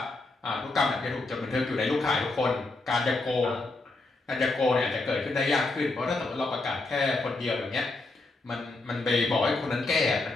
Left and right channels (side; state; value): right; quieter; 3.2 dB